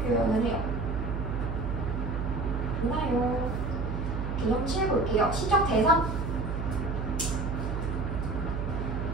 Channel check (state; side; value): noise; right; hum, 3 dB below the sound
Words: 해요. 맞나요? 개념 7 볼게요. 시적 대상.